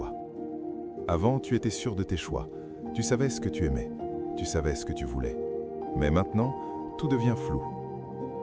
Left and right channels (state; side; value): identical; both; correlation 1.00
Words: Avant, tu étais sûr de tes choix. Tu savais ce que tu aimais. Tu savais ce que tu voulais. Mais maintenant, tout devient flou.